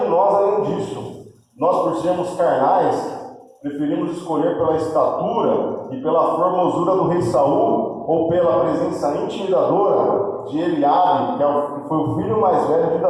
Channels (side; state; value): both; identical; correlation 1.00